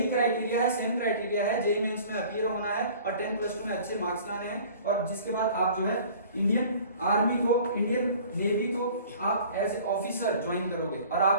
क्राइटेरिया है, सेम क्राइटेरिया है, जेईई मेंस में अपीयर होना है और 10+2 में अच्छे मार्क्स लाने हैं और जिसके बाद आप जो है इंडियन आर्मी को, इंडियन नेवी को आप एज ए ऑफिसर ज्वाइन करोगे और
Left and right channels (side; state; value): both; inverted; correlation -0.48